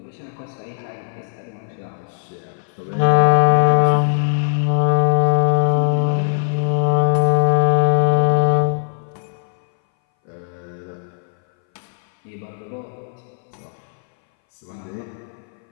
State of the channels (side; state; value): right; silent; 61 dB below the other